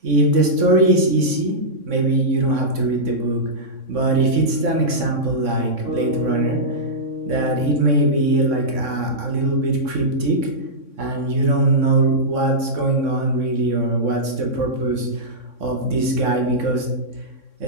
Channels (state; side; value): late; left; 3.6 ms